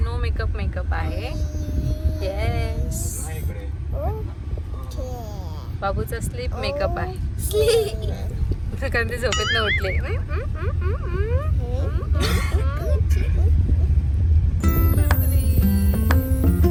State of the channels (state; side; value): identical; both; correlation 1.00